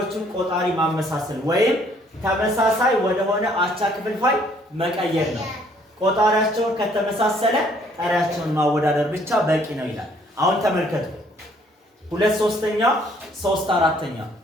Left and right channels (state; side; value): normal; both; correlation 0.63